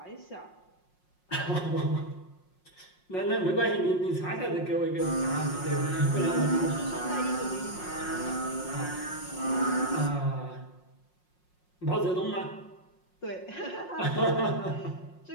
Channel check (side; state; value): right; late; 5.5 ms